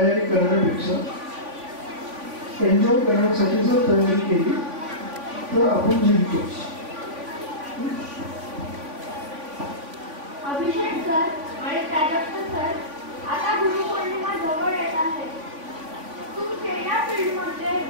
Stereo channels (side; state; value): left; late; 3.5 ms